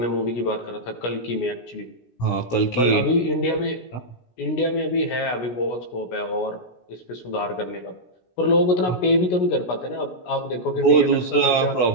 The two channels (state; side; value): late; right; 17 ms